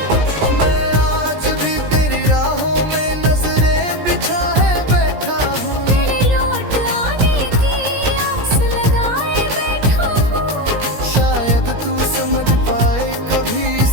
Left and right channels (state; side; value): late; left; 17 ms